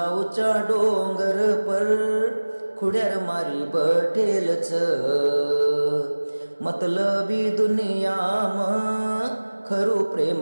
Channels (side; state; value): both; inverted; correlation -1.00